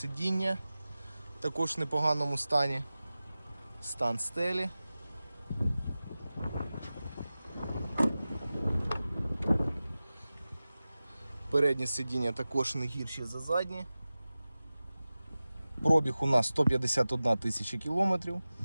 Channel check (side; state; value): both; inverted; correlation -0.96